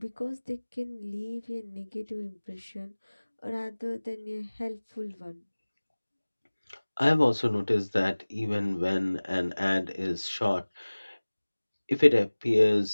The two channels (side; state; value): both; inverted; correlation -1.00